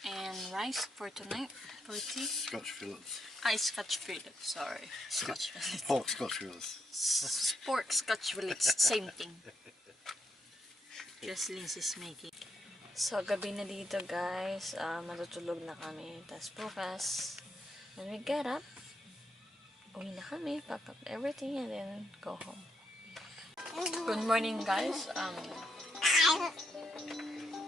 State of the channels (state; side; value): normal; both; correlation 0.79